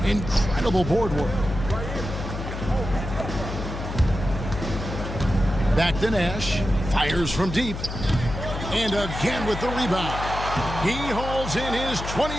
Incredible board work. Back to Nash. Fires from deep. And again with the rebound. He hauls in his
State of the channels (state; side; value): noise; left; hum, 7 dB below the sound